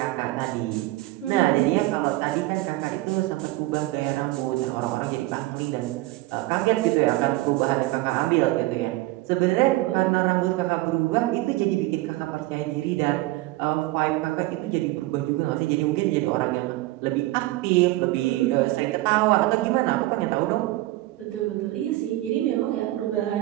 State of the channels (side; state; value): left; quieter; 18.4 dB